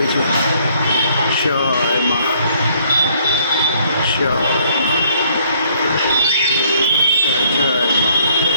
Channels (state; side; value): inverted; both; correlation -0.63